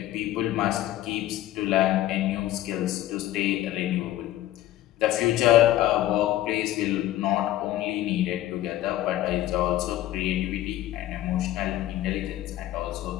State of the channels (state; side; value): quieter; right; 14.3 dB